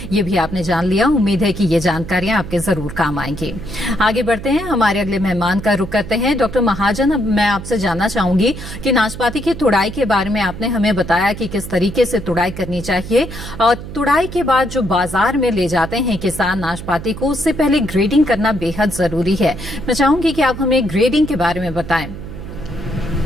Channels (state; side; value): noise; right; hum, 11 dB below the sound